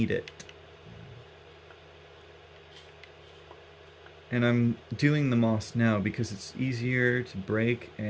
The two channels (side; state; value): both; identical; correlation 1.00